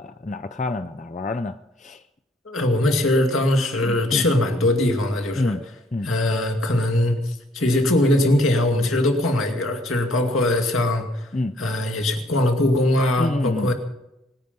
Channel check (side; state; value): both; normal; correlation 0.64